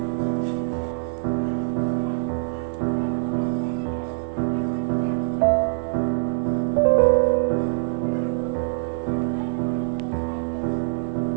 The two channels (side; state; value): left; silent; digital silence